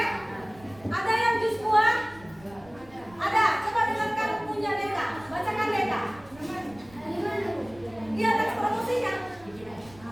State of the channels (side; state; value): right; noise; rumble, 23 dB below the sound